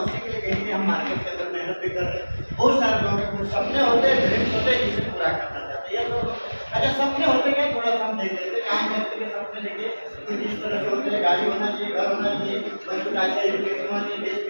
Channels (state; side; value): inverted; both; correlation -1.00